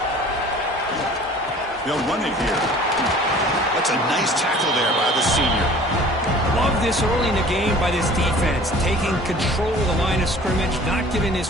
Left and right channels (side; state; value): both; normal; correlation 0.48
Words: They'll run it here. That's a nice tackle there by the senior. Love this early in the game by this defense, taking control of the line of scrimmage, not giving this